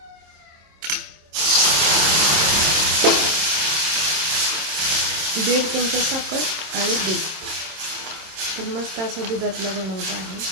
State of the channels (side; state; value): left; late; 26 ms